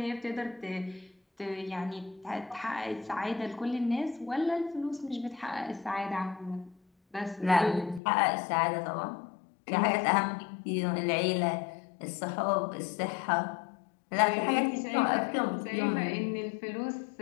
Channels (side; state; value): right; drops out; at 8.0 s